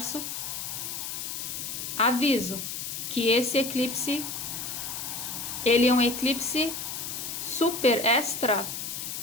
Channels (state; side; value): noise; left; hiss, 5 dB below the sound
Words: Aviso que esse eclipse, ele é um eclipse super extra